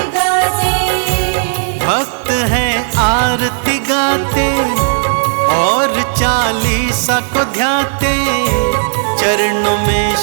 गाते। भक्त हैं आरती गाते और 40 को ध्याते। चरणों में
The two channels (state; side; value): silent; left; 71 dB below the other